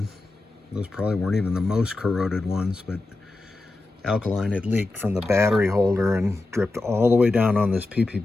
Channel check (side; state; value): right; quieter; 3.1 dB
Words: Those probably weren't even the most corroded ones, but alkaline had leaked from the battery holder and dripped all the way down on this